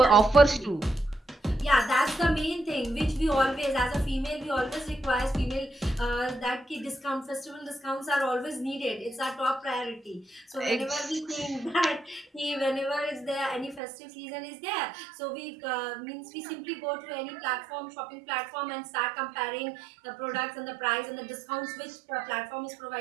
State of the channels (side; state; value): left; drops out; at 13.8 s